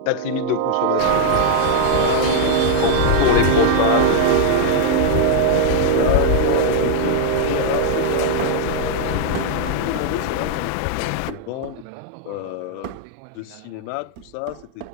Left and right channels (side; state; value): both; different; correlation 0.00